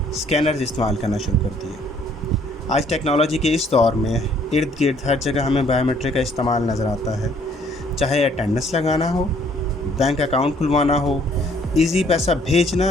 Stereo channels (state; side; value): normal; both; correlation 0.62